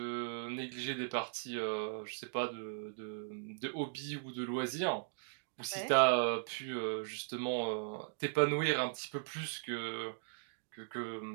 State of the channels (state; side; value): silent; left; digital silence